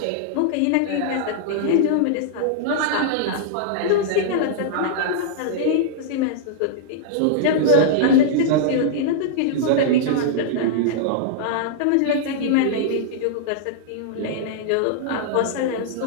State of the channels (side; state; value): both; different; correlation -0.02